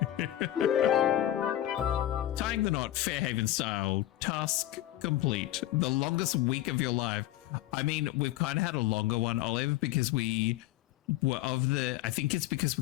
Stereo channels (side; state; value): right; quieter; 14.1 dB